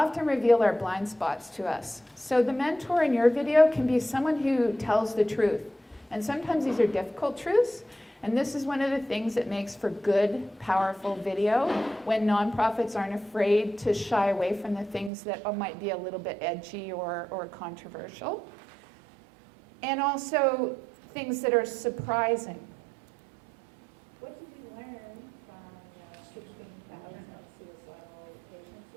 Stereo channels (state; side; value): drops out; left; at 15.1 s